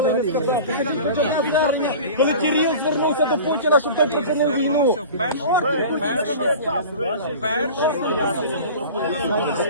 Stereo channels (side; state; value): both; inverted; correlation -0.37